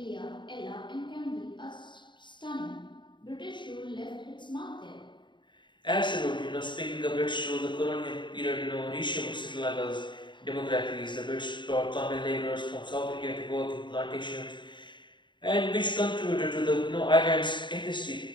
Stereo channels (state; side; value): late; right; 0.23 ms